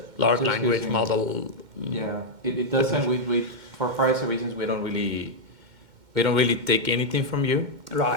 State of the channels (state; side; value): late; left; 2.1 ms